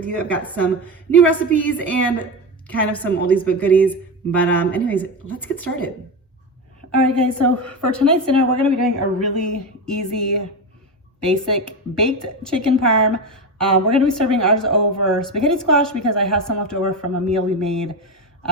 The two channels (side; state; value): both; normal; correlation 0.18